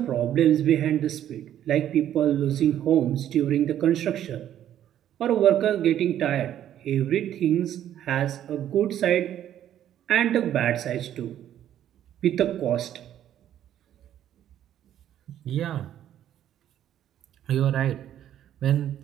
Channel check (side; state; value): left; quieter; 11.1 dB